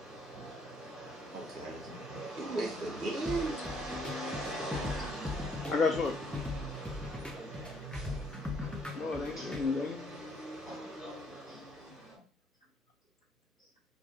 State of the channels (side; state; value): both; normal; correlation 0.67